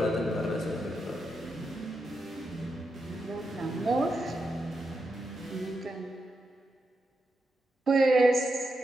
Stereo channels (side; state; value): both; normal; correlation 0.86